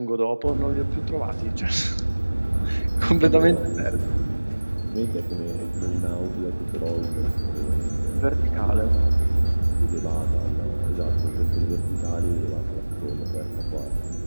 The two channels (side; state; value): both; inverted; correlation -1.00